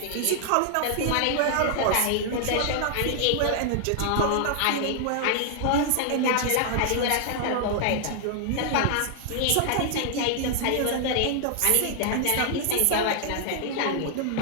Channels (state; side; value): different; both; correlation 0.00